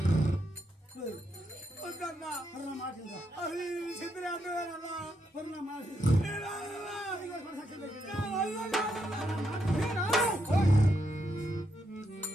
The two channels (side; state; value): both; normal; correlation 0.80